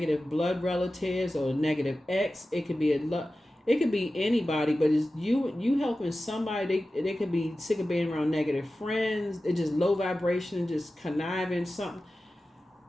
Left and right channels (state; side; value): normal; both; correlation 0.94